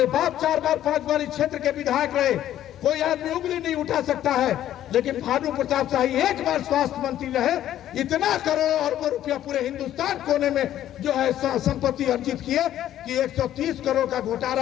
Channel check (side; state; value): right; quieter; 12.0 dB